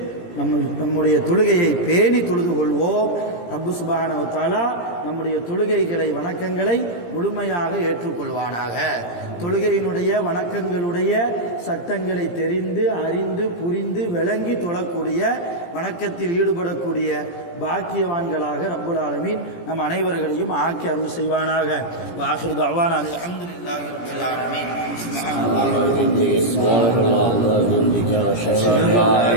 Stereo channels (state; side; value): late; right; 17 ms